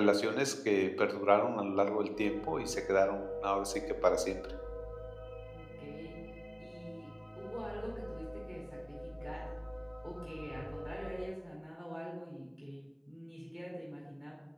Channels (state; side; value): identical; both; correlation 1.00